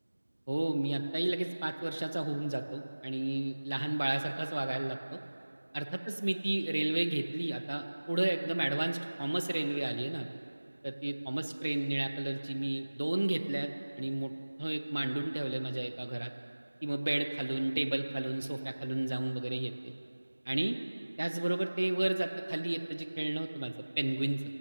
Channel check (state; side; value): inverted; both; correlation -1.00